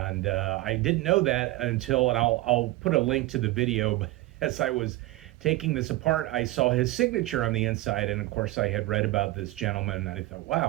I didn't know that until, and I'll put a link to the video. But as I was taking this apart, I saw his signature on the inside, and of course I had read about this gentleman, and I thought,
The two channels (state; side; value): quieter; left; 18.4 dB